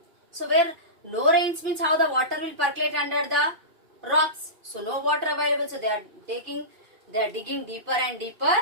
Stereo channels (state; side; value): late; left; 2.5 ms